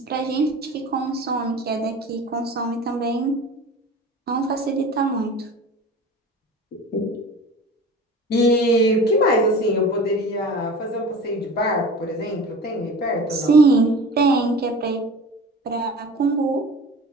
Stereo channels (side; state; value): both; normal; correlation 0.38